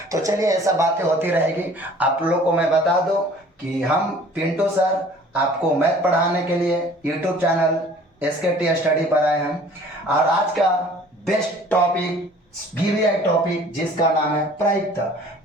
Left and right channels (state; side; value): normal; both; correlation 0.51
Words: तो चलिए, ऐसा बातें होती रहेगी। आप लोग को मैं बता दूं कि हम पिंटू सर आपको मैथ पढ़ाने के लिए यूट्यूब चैनल SKT स्टडी पर आए हैं, और आज का बेस्ट टॉपिक VVI टॉपिक जिसका नाम है प्रायिकता।